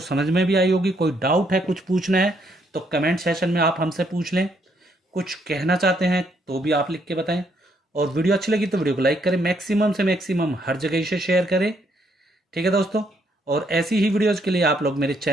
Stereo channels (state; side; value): normal; both; correlation 0.72